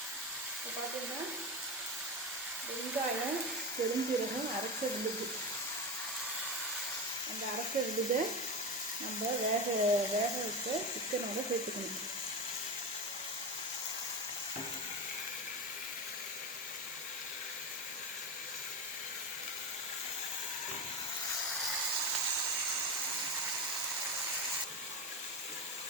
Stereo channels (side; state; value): both; normal; correlation 0.19